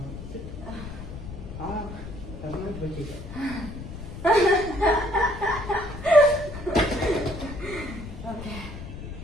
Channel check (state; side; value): noise; left; rumble, 10 dB below the sound